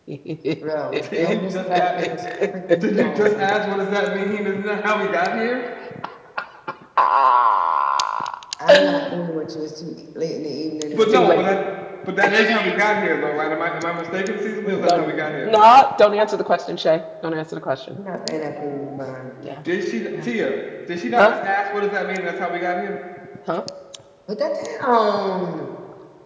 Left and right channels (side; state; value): both; identical; correlation 1.00